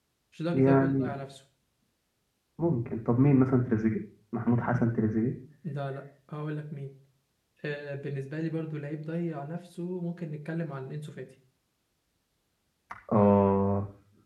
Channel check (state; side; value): identical; both; correlation 1.00